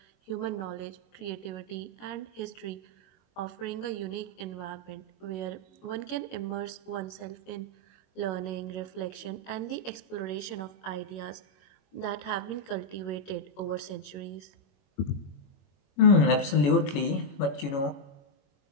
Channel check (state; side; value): late; right; 21 ms